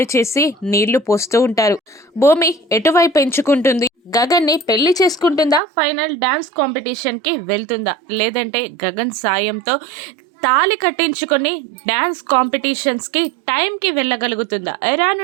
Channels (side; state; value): left; drops out; at 5.6 s